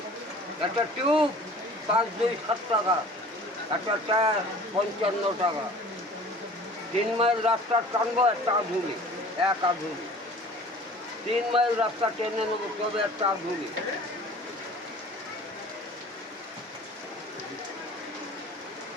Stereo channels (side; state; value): both; normal; correlation 0.46